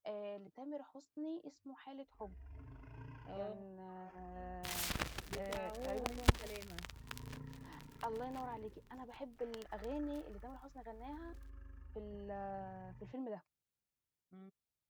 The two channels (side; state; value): both; identical; correlation 1.00